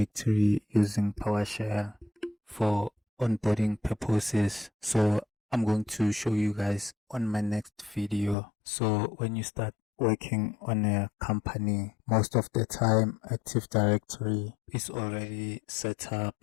using PowerShell for onboarding purposes. So I'm going to show you guys on my next video. So when you start working on a company, most of the time Active Directory is already set up,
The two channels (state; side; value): drops out; right; at 8.3 s